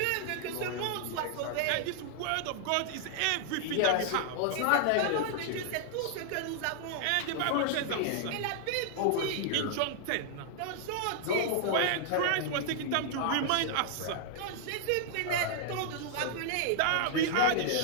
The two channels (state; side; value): different; both; correlation -0.01